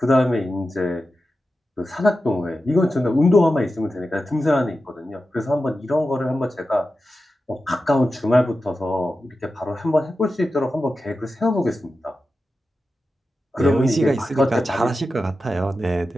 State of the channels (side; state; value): both; normal; correlation 0.92